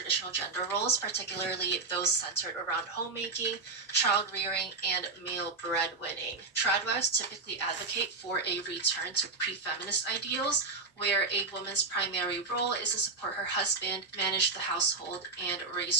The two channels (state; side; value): quieter; left; 4.0 dB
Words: gender roles, particularly those centered around homemaking, child rearing, and male breadwinning. Tradwives typically advocate for a return to pre-feminist ideals, where a woman's primary role is to support her husband, manage the household, and